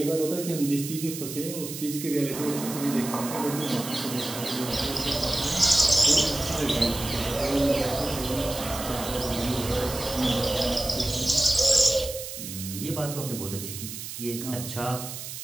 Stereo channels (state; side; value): noise; right; hiss, 9 dB below the sound